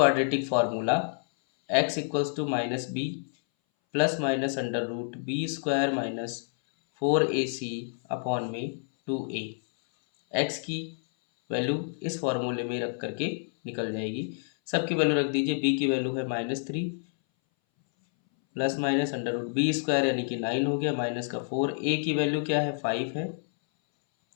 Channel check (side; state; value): right; silent; 59 dB below the other